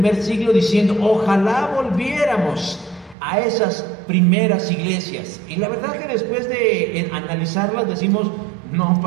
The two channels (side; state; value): left; drops out; at 3.2 s